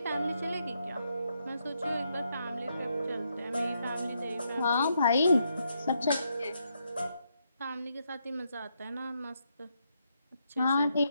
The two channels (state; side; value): inverted; both; correlation -0.79